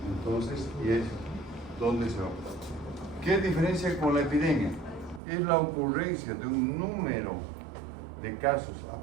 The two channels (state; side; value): drops out; left; at 5.2 s